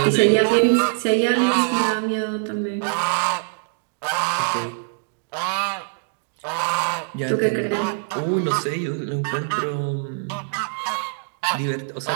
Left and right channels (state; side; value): silent; left; digital silence